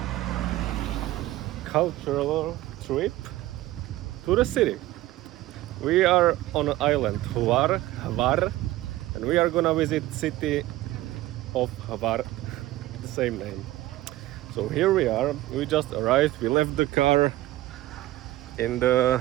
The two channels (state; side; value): quieter; left; 16.5 dB